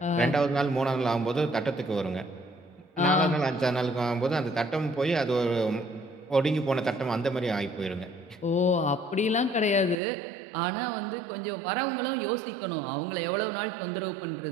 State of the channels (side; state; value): left; drops out; at 10.0 s